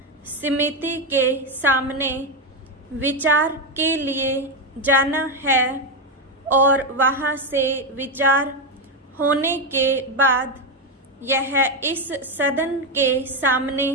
समिति के सामने विचार के लिए जाना है और वहां से विचार होने के बाद यह इस सदन के सामने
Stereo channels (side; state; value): both; normal; correlation 0.09